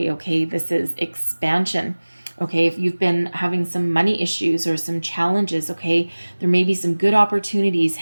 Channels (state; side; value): inverted; both; correlation -1.00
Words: Okay, this is expansion. Okay, if you've been having some money issues or some challenges, okay, there may be some good opportunities